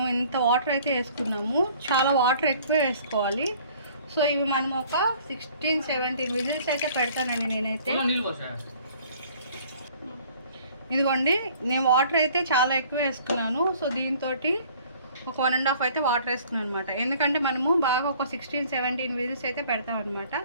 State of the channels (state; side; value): inverted; both; correlation -0.54